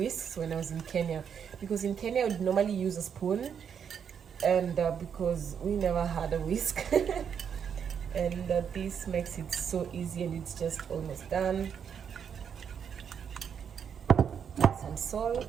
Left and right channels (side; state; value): left; quieter; 7.6 dB